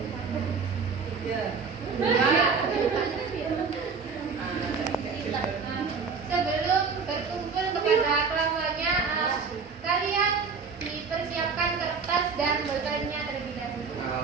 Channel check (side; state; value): left; quieter; 5.3 dB